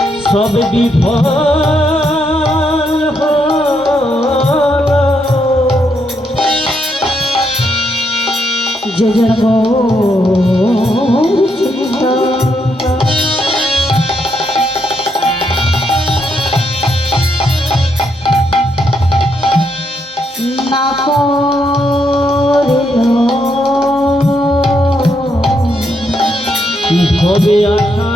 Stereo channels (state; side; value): normal; both; correlation 0.77